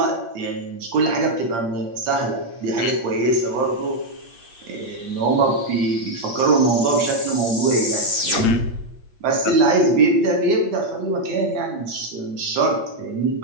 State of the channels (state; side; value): late; left; 8.6 ms